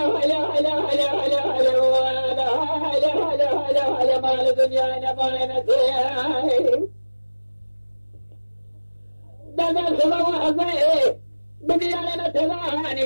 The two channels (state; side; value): inverted; both; correlation -1.00